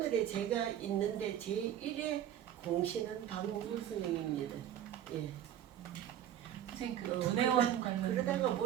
제가 있는데 제1의 공신은 박몽글 선생님입니다. 예. 선생님 그 문혜원 관련 그러다가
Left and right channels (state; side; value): quieter; left; 10.8 dB